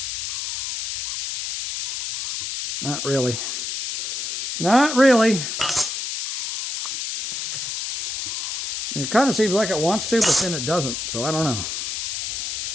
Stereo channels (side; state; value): left; noise; hiss, 4 dB below the sound